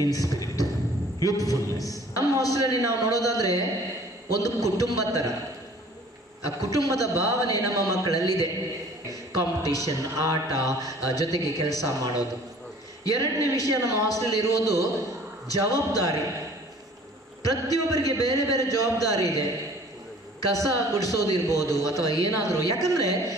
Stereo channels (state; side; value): normal; both; correlation 0.51